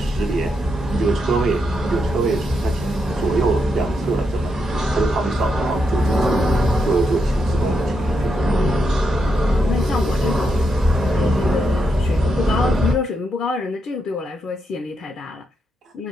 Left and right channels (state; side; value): normal; both; correlation 0.82